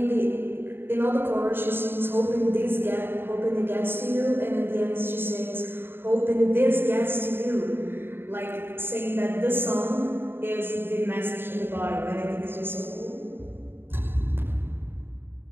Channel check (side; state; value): left; late; 0.10 ms